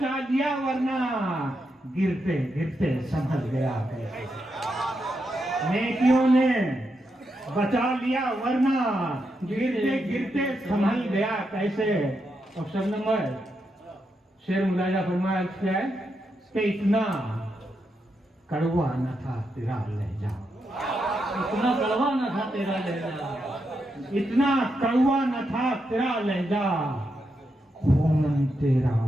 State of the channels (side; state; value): both; normal; correlation 0.84